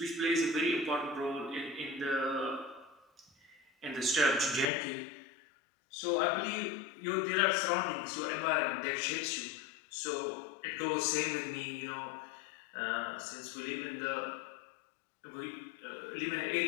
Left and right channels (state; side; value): drops out; right; at 4.7 s